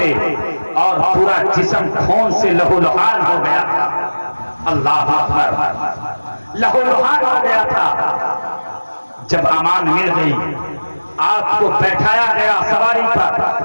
और पूरा जिस्म खून से लहूलुहान हो गया था। अल्लाह अकबर। लहूलुहान हो गया था। जब अमान मिल गई, आपको बैठाया गया सवारी पर,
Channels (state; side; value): inverted; both; correlation -1.00